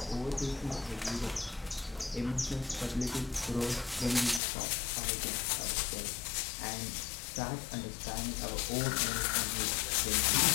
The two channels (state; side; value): drops out; right; at 4.4 s